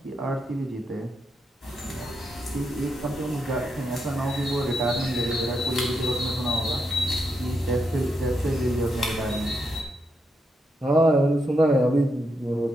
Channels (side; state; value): both; normal; correlation 0.82